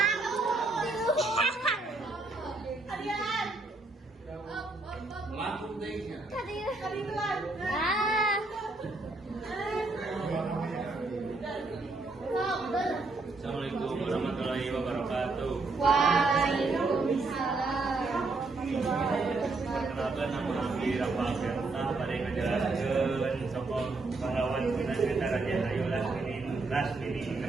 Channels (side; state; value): left; quieter; 3.4 dB